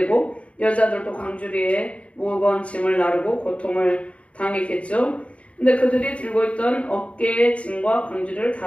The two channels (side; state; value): right; late; 0.063 ms